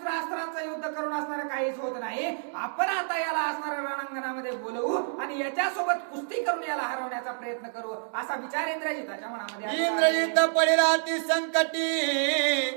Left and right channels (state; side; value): silent; left; digital silence